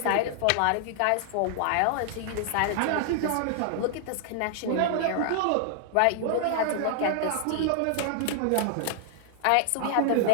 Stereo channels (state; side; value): different; both; correlation 0.00